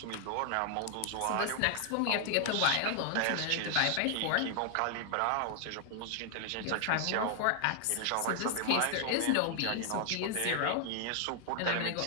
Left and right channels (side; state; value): both; different; correlation 0.00